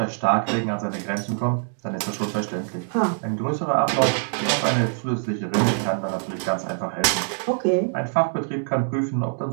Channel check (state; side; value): silent; left; digital silence